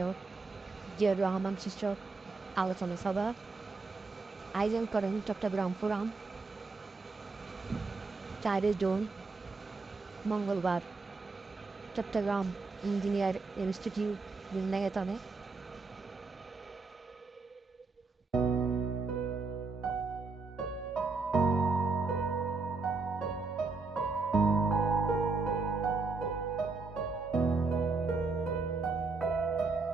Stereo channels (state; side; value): quieter; left; 4.0 dB